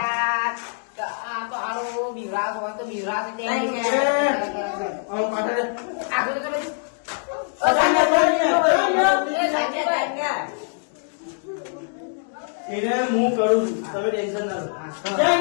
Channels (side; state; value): right; silent; 61 dB below the other